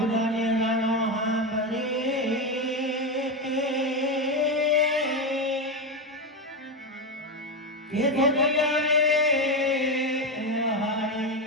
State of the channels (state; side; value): normal; both; correlation 0.12